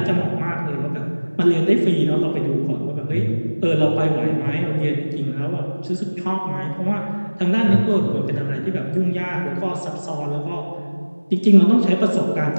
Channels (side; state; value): both; inverted; correlation -1.00